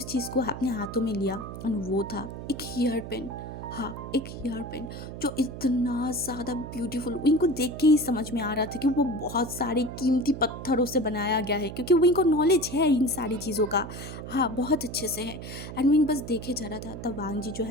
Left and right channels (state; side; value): noise; right; hum, 10 dB below the sound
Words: चीज़ को अपने हाथों में लिया एंड वो था एक हेयर पेन। हाँ, एक हेयर पेन जो इतना ज़्यादा ब्यूटीफुल, विंग को देख के ही समझ में आ रहा था कि वो बहुत सारे कीमती पत्थरों से बनाया गया है, क्योंकि विंग को नॉलेज है इन सारी चीज़ों का। हाँ, बहुत अच्छे से है। एंड विंग बस देखे जा रहा था। तब वांग जी जो